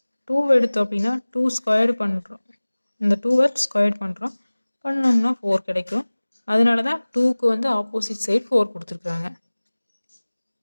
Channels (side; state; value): both; inverted; correlation -1.00